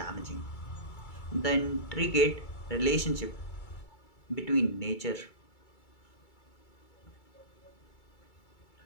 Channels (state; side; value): late; right; 2.3 ms